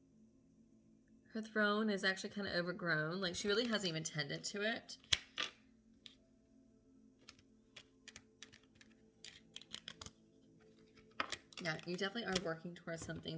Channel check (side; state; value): both; identical; correlation 1.00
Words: Her throne is actually kind of overgrown. Like, she really hasn't even tended to it. Yeah, you definitely are working towards something